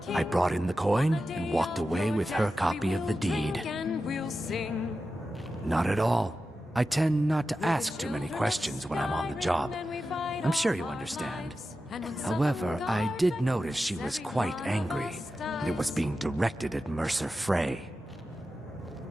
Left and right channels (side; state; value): both; normal; correlation 0.92